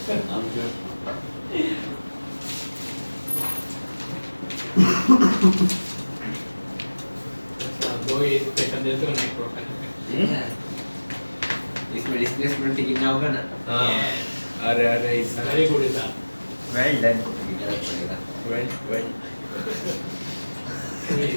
दो ही इक्वेशन देते हो ना एक प्रोफाइल इसमें डिस्प्लेसमेंट कितना होगा ना, हाँ अरे अरे ऐसा वेरी गुड इंसान वेल डन, वेल वेल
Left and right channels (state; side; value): inverted; both; correlation -1.00